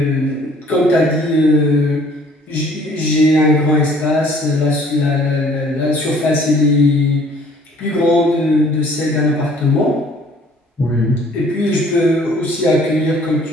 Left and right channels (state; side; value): normal; both; correlation 0.56